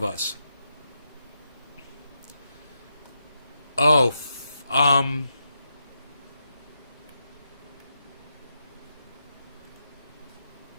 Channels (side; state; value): both; inverted; correlation -0.85